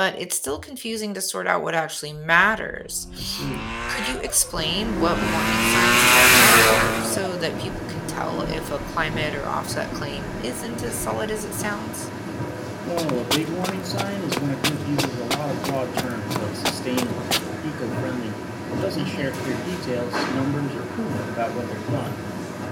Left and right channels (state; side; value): identical; both; correlation 1.00